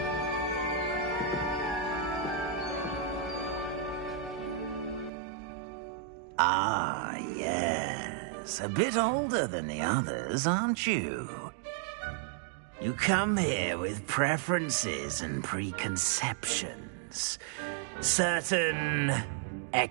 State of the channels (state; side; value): drops out; left; at 5.1 s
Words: Ah, yes. A bit older than the others, aren't you? You come here with preferences and preconceptions. Certain